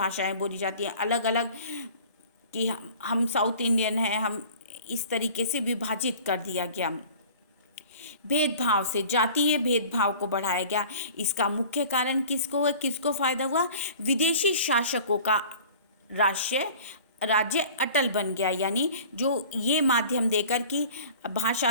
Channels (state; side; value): inverted; both; correlation -0.45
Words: बोली जाती हैं, अलग अलग कि हम साउथ इंडियन हैं, हम इस तरीके से विभाजित कर दिया गया। भेदभाव से, जातीय भेदभाव को बढ़ाया गया। इसका मुख्य कारण किसको फ़ायदा हुआ? विदेशी शासकों का राज्य अटल बन गया। यानी जो ये माध्यम देकर कि